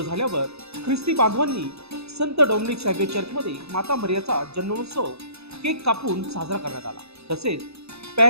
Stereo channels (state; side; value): late; left; 0.79 ms